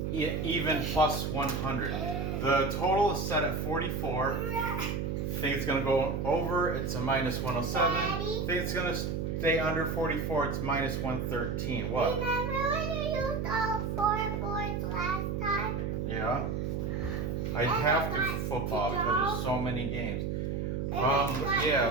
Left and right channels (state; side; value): noise; right; hum, 1 dB below the sound